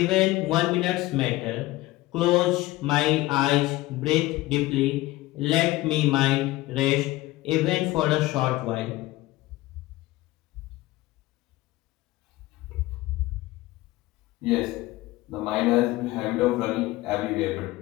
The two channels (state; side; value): quieter; right; 18.5 dB